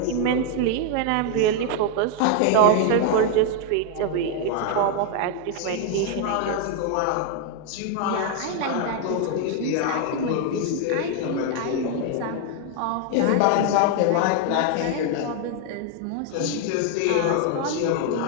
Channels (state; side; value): different; both; correlation 0.01